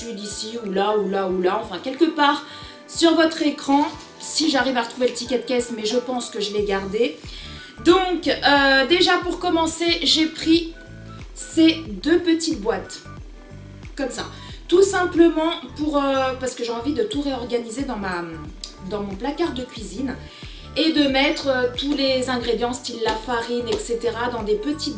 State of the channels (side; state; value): both; identical; correlation 1.00